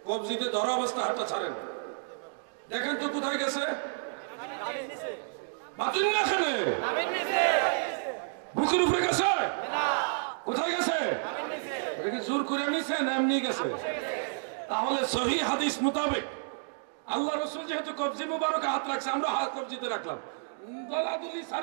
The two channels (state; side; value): silent; left; digital silence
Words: কবজিতে ধরা অবস্থায় হাতটা ছাড়েন। দেখেন তো কোথায় গেছে? বুকের উপরে গেছে? কোথায় গেছে? এটাকে জোর করে নিছে না এমনি গেছে? তাহলে সহি হাদিস মোতাবেক আল্লাহ রসুল যেহেতু কবজি মুবারকে হাত রাখছে, আমরা হাত কবজিতে রাখলাম, দলাদলি